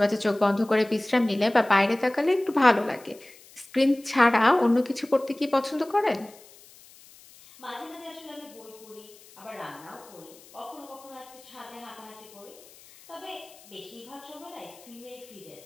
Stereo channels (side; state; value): left; noise; hiss, 23 dB below the sound